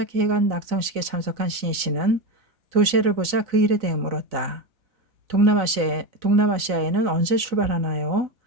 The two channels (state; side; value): late; left; 3.9 ms